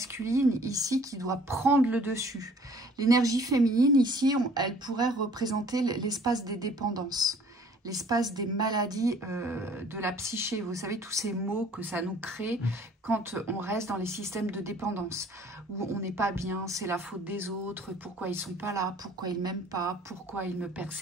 ici, qui doit prendre le dessus. L'énergie féminine, ici, elle pourrait représenter l'espace des dépendances, l'espace des maladies de la psyché. Vous savez, tous ces mots que ça nous crée quand on reste dans les systèmes de dépendance, où on n'est pas bien, c'est la faute des autres, pourquoi ils ne sont pas là, pourquoi ils ne m'aiment pas, pourquoi ils me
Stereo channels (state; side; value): normal; both; correlation 0.54